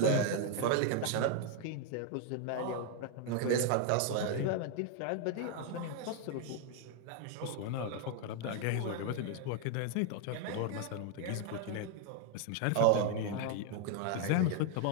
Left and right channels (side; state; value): both; different; correlation 0.00